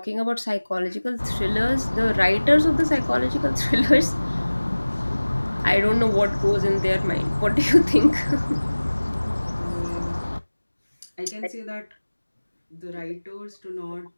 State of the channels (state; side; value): inverted; both; correlation -1.00